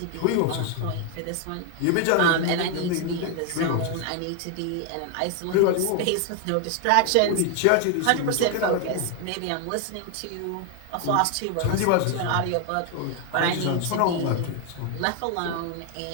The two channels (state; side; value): different; both; correlation 0.01